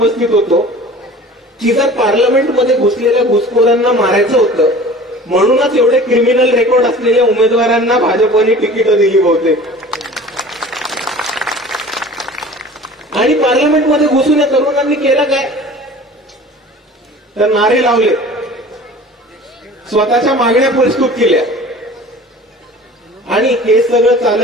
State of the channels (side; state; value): both; normal; correlation 0.43